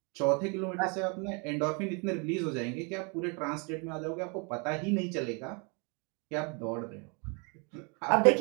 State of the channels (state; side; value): quieter; left; 33.5 dB